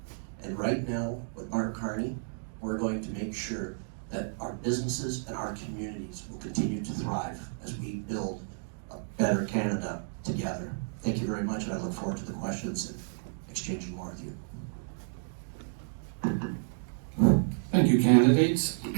And right now, with Mark Carney, we're going to make sure that our businesses and our communities will continue to thrive as we build a better Canada together. Thank you very much, and I look forward to the questions and exchanging more with you. Thank you, candidates.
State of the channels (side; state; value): left; silent; digital silence